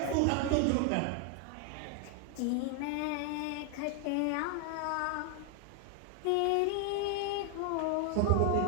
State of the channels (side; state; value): both; different; correlation 0.00